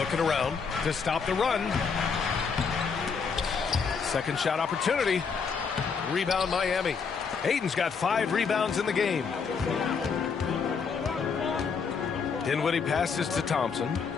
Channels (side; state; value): right; quieter; 5.7 dB